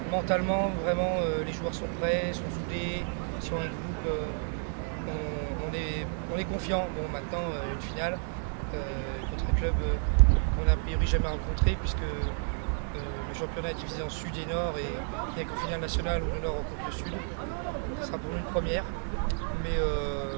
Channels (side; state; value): left; silent; 57 dB below the other